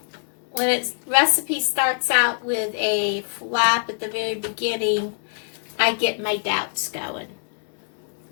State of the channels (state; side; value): silent; right; 63 dB below the other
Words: when its recipe starts out with a flop at the very beginning, I get my doubts going.